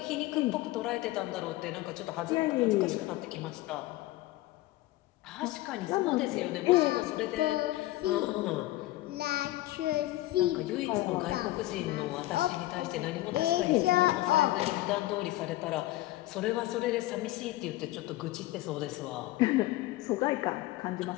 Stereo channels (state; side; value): quieter; right; 17.2 dB